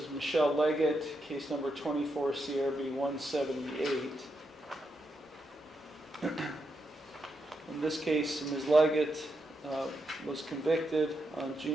Michelle Leggett, case number 24 CRB 178. In this case, Ms. Leggett was convicted on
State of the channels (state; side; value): normal; both; correlation 0.83